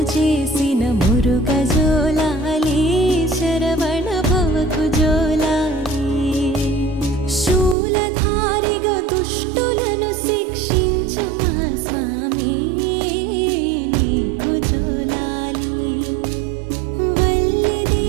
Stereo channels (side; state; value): left; drops out; at 7.8 s